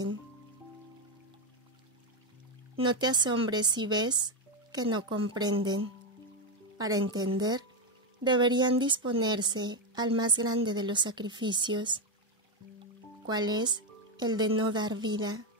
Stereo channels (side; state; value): both; normal; correlation 0.06